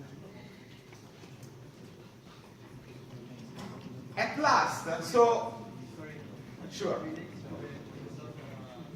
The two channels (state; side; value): identical; both; correlation 1.00